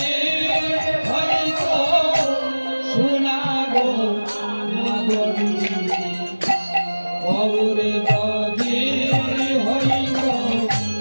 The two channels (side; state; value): both; inverted; correlation -1.00